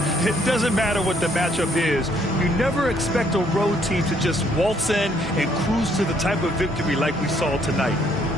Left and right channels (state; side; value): normal; both; correlation 0.67